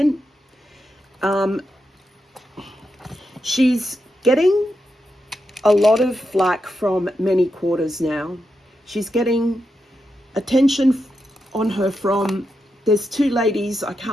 She's getting a lot of flack from many quarters now. She's getting attention on her from, there's 2 ladies, I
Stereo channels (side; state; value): both; normal; correlation 0.86